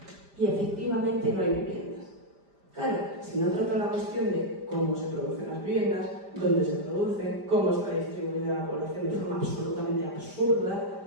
y efectivamente no hay viviendas. Claro, si no trato la cuestión de cómo se producen las viviendas, dónde se producen, cómo está distribuida la población de forma absolutamente absurda,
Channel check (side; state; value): left; late; 5.0 ms